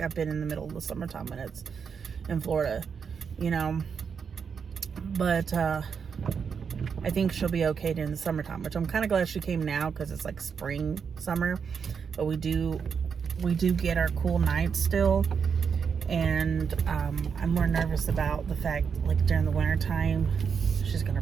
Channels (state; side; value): quieter; left; 6.4 dB